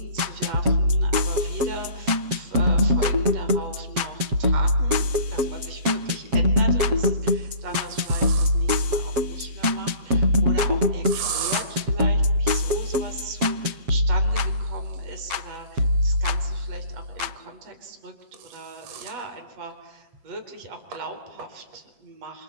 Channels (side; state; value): left; late; 7.5 ms